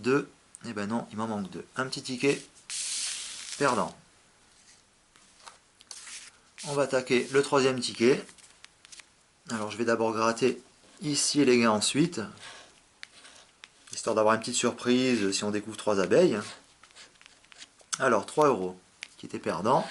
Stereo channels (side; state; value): both; identical; correlation 1.00